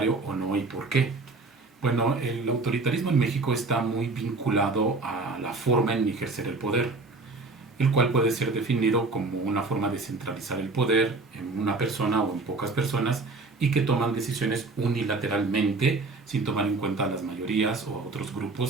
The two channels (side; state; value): left; quieter; 3.5 dB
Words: o no y por qué. Bueno, el autoritarismo en México está muy vinculado a la forma en ejercer el poder, el cual puede ser definido como una forma de centralizar el poder en una persona o en pocas personas y que toman decisiones unilateralmente sin tomar en cuenta a las mayorías o a otros